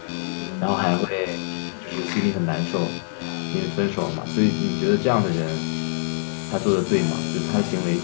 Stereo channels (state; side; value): silent; right; digital silence